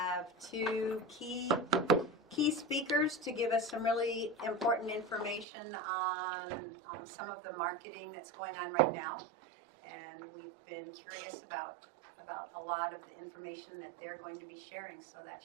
2 key speakers to give us some really important information on some of the marketing that's going on right now. And we've been curious about a lot of the information that they're going to be sharing, so that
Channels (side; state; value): left; drops out; at 5.5 s